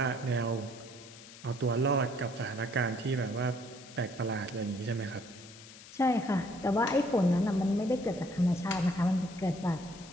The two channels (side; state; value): left; noise; hiss, 18 dB below the sound